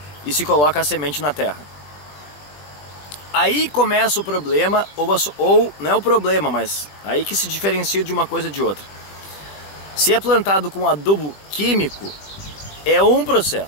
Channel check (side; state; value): right; late; 20 ms